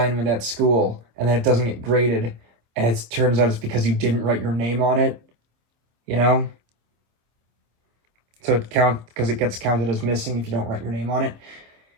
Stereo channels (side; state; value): left; late; 26 ms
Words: at school, and then it doesn't get graded, and it turns out it's because you didn't write your name on it, you know? So because it gets counted as missing if you don't write your name on it.